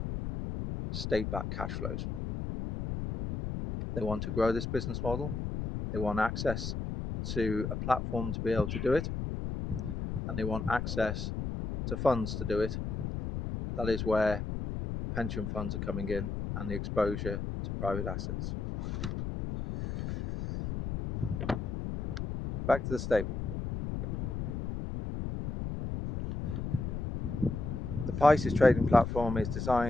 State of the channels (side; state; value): left; noise; rumble, 4 dB below the sound